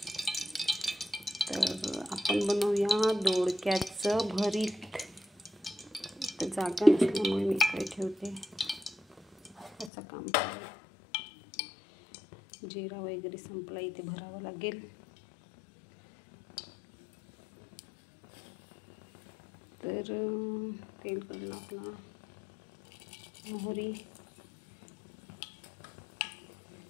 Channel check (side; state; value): right; drops out; at 9.9 s